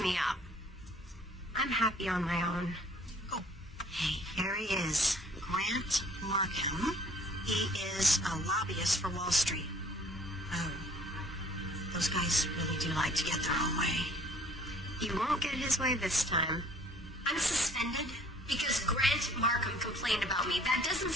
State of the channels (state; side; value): normal; both; correlation 0.56